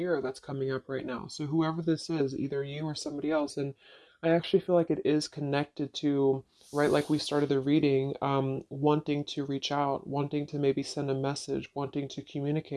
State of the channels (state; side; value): identical; both; correlation 1.00